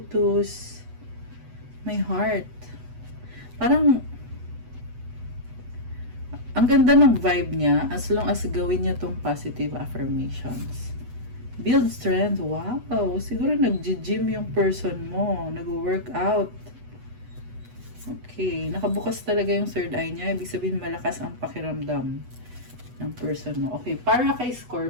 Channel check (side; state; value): left; late; 8.1 ms